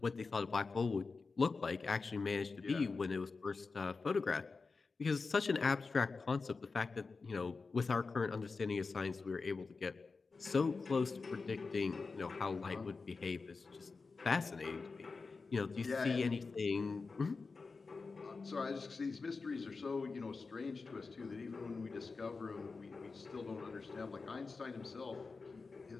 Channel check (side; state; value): right; quieter; 4.3 dB